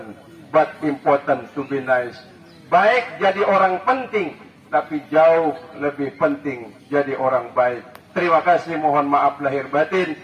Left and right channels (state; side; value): identical; both; correlation 1.00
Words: but important to be nice. Baik jadi orang penting, tapi jauh lebih penting jadi orang baik. Terima kasih, mohon maaf lahir batin.